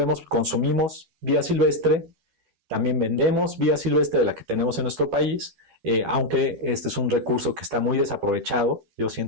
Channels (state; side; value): late; left; 12 ms